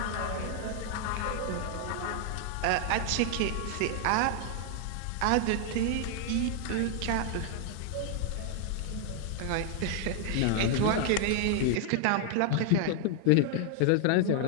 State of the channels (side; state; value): both; different; correlation 0.00